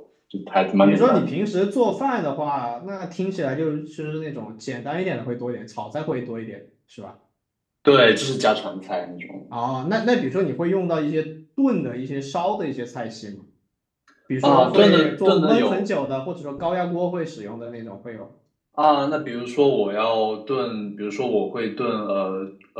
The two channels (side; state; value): both; identical; correlation 1.00